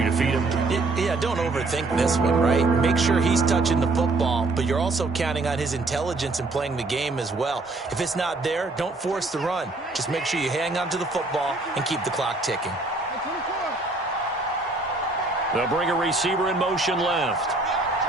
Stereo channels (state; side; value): quieter; left; 3.2 dB